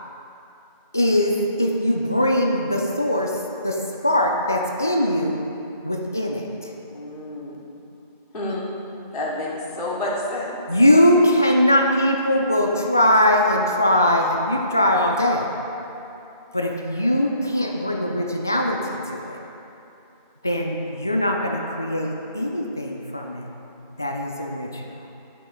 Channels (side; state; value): both; inverted; correlation -0.64